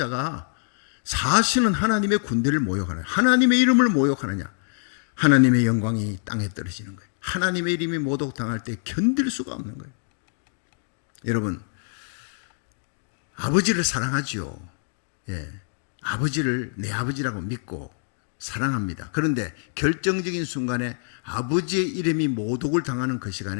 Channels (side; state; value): right; silent; digital silence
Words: 사실은 하나님의 군대를 모욕하느냐, 하나님의 이름을 모욕하느냐. 하나님의 영광이 땅에 떨어지는 거예요. 하나님의 이름이 모독당할 때 견딜 수가 없는 거예요. 여러분, 아버지를 사랑하지요. 아버지를 내 아버지라고 믿고 사랑합니다. 그런데 결정적인 순간에 아버지의 이름이 모독을 당하는 그